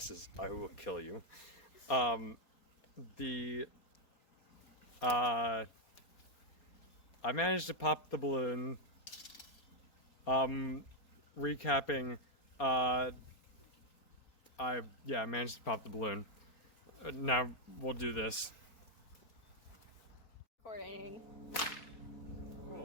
I will kill you. I managed to pop the balloon. Recapping, I managed to pop the balloon. Now we'll do this. Recording.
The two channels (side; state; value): right; late; 4.3 ms